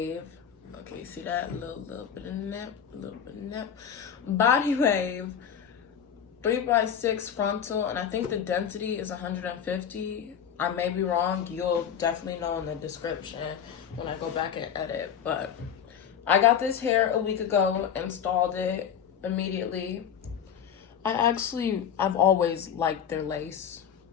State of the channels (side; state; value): right; quieter; 8.3 dB